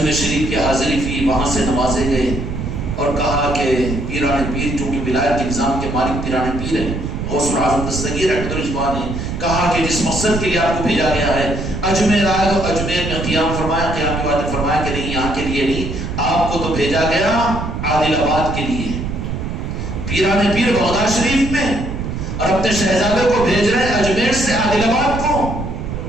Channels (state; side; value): noise; right; rumble, 5 dB below the sound